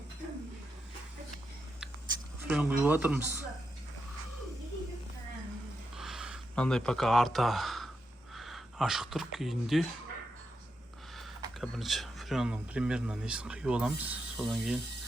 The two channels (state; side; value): normal; both; correlation 0.85